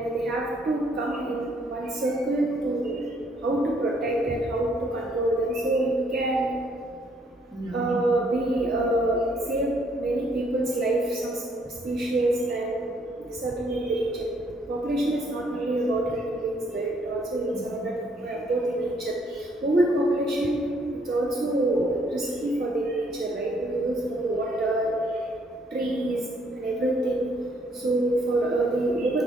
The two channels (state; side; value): normal; both; correlation 0.67